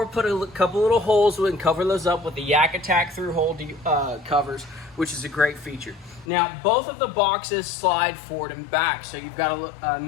put a couple little holes and cover those up with the Yak Attack through hole covers, which is a great feature. Now, both of the boxes slide forward and back. So you've got a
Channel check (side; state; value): right; drops out; at 6.2 s